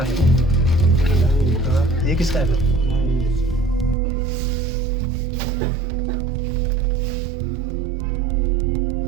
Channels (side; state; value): left; drops out; at 4.0 s